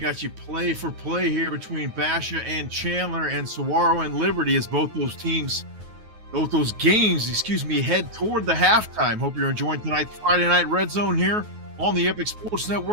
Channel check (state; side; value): late; left; 9.4 ms